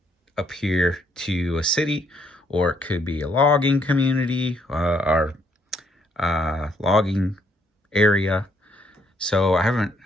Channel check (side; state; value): both; normal; correlation 0.70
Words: here to a city, or it could be a logging community or logging area. So I